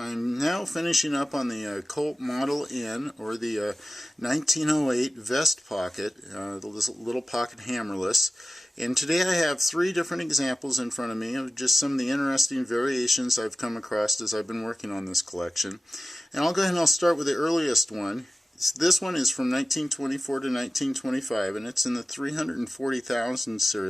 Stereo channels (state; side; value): normal; both; correlation 0.95